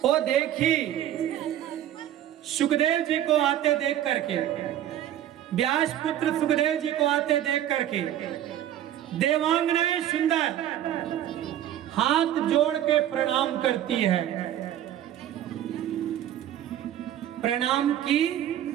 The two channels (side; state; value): left; quieter; 11.7 dB